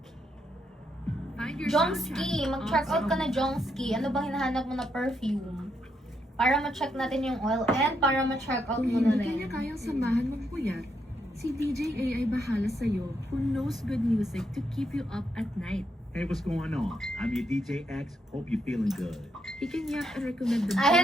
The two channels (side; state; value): both; normal; correlation 0.79